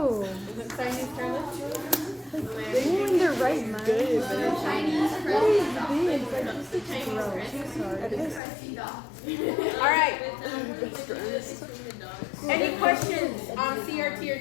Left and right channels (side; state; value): right; drops out; at 8.4 s